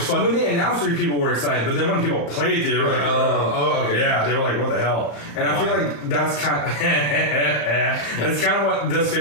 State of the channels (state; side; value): late; right; 35 ms